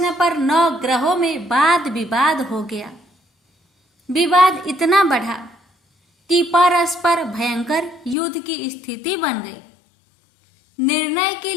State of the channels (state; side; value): drops out; right; at 8.2 s